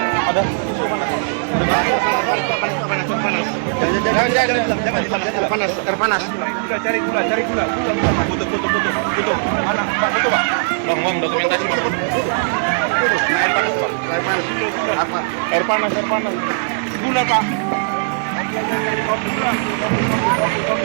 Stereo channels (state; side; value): silent; left; digital silence